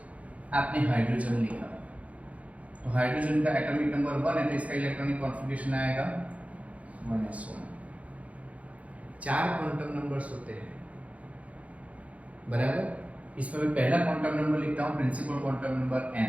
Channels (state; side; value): late; left; 0.066 ms